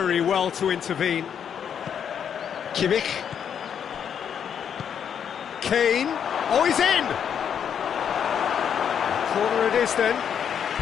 well to intervene. Kimmich. Kane. Oh, he's in! Corner it is then.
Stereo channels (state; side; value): quieter; right; 8.2 dB